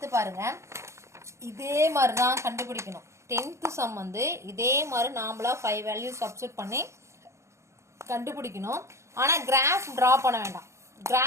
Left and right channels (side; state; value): left; late; 0.14 ms